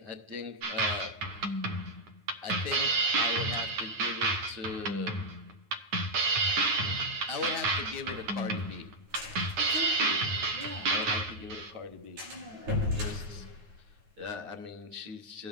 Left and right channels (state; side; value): late; left; 9.4 ms